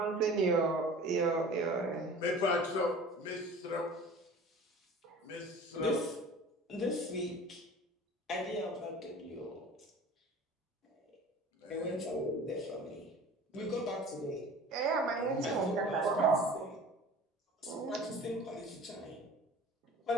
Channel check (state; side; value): normal; both; correlation 0.42